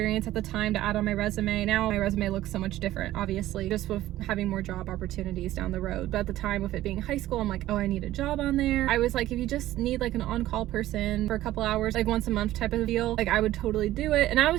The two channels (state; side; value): quieter; left; 14.8 dB